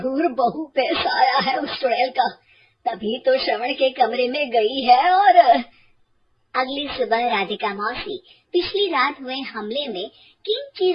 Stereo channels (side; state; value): both; identical; correlation 1.00